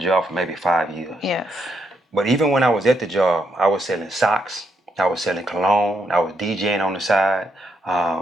for maybe 5 years. Yes. But even when I was at the job, I was selling socks. I was selling cologne. I was DJing on the side.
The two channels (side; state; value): both; normal; correlation 0.77